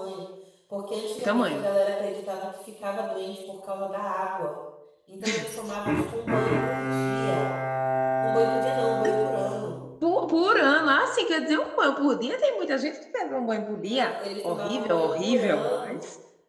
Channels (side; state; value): both; identical; correlation 1.00